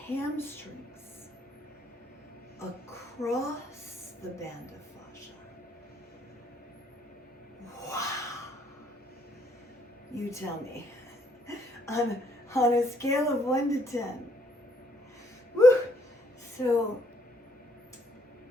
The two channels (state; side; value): normal; both; correlation 0.68